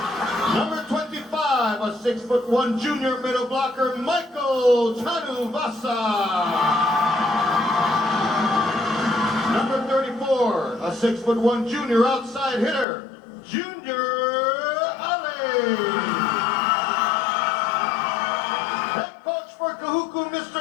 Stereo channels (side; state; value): right; drops out; at 12.9 s